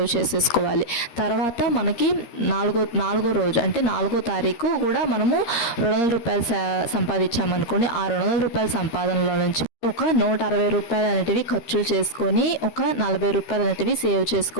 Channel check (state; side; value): late; right; 13 ms